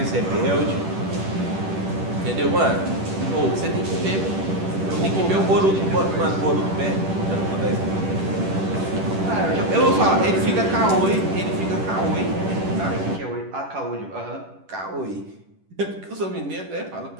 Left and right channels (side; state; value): left; late; 10 ms